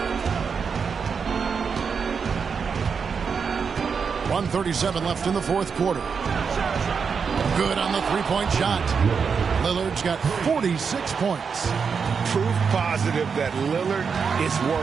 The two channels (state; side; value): quieter; left; 5.9 dB